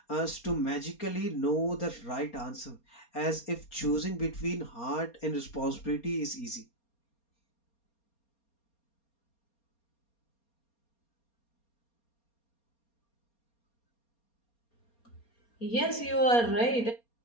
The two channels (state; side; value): late; right; 4.3 ms